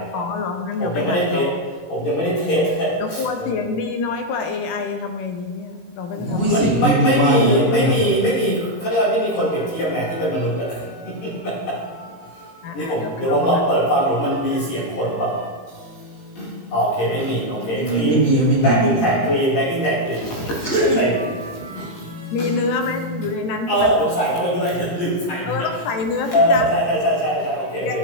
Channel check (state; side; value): late; right; 17 ms